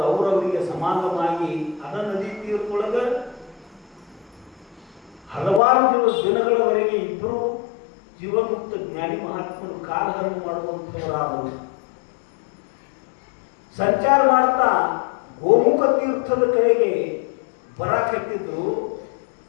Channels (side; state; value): right; drops out; at 5.6 s